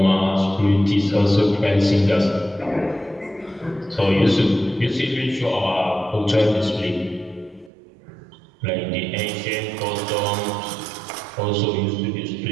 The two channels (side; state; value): left; drops out; at 7.7 s